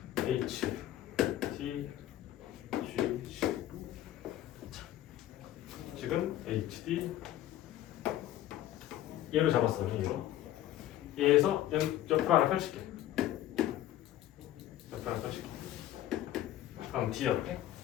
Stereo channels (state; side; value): quieter; right; 13.2 dB